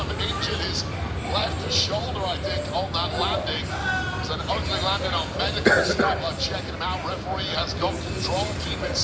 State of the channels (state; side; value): identical; both; correlation 1.00